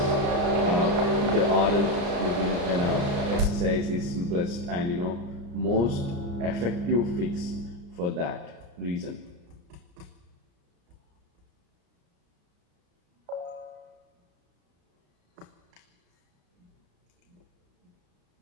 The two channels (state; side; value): late; left; 35 ms